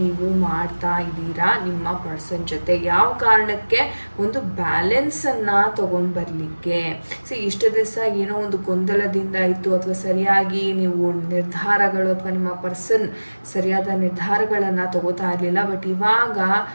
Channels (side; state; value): both; inverted; correlation -1.00